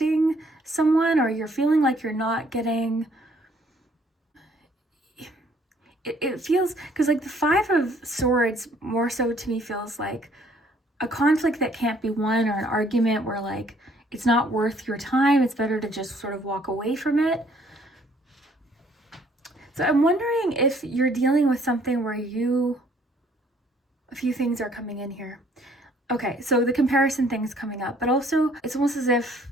someone, or you're feeling like you're not getting... It feels, because like the 5 of Swords more so to me feels like a conflict that can't be won, or an argument where like it's not worth your time. It's better to just sort of walk away from it. So I'm wondering if you're dealing with something where a few things are coming in here. Okay, so the comparison thing's coming up, but also it's almost as if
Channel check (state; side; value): normal; both; correlation 0.62